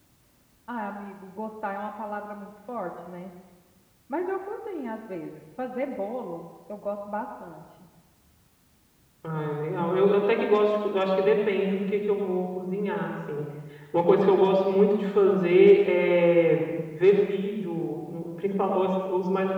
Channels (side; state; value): both; identical; correlation 1.00